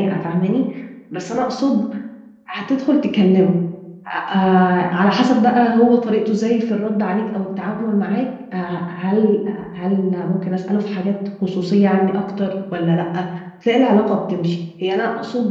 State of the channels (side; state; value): both; identical; correlation 1.00